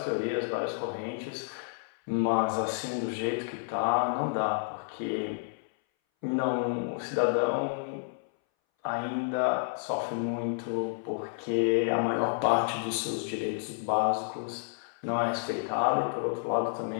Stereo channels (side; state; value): right; silent; 58 dB below the other